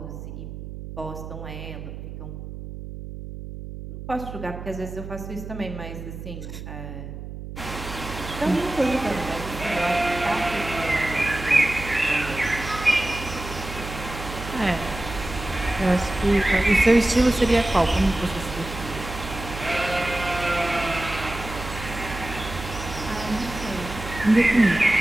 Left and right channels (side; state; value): right; noise; hum, 10 dB below the sound